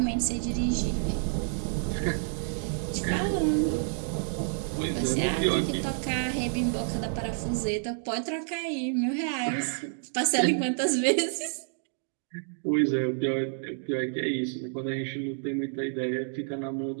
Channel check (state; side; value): silent; left; digital silence